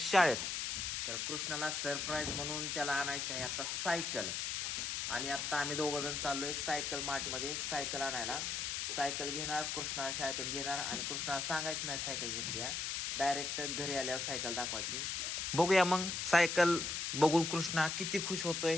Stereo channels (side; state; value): left; noise; hiss, 1 dB below the sound